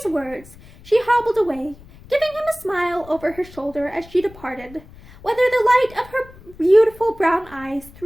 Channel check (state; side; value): noise; left; rumble, 21 dB below the sound